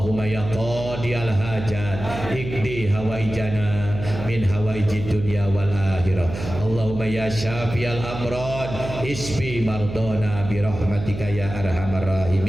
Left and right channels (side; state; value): right; noise; hum, 9 dB below the sound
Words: ya qadiyal hajat ikdi hawaijana min hawaijid dunya wal akhirah. Allahumma ya syafiyal amrad isfi mardona bi rahmatika ya arhamar